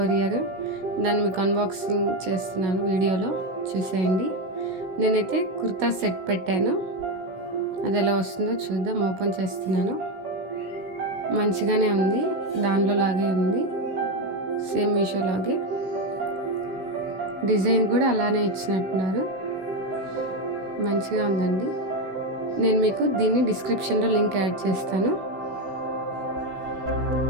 దాన్ని మీకు అన్బాక్సింగ్ చేస్తున్నాను, వీడియోలో చూసేయండి. నేనైతే కుర్తా సెట్ పెట్టాను, అది ఎలా వస్తుందో చూద్దాం. ఓపెన్ చేస్తున్నాను. మంచిగానే ఉంది, దానిలో లాగే ఉంది, సేమ్ మీషో లాగే. డిజైన్ కూడా అలానే ఇచ్చినట్టున్నారు, మంచిగా ఉందండి. నేను మీకు దీన్ని డిస్క్రిప్షన్లో లింక్ యాడ్ చేస్తాను,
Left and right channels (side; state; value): left; late; 16 ms